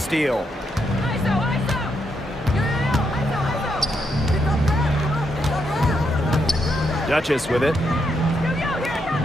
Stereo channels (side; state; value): both; normal; correlation 0.79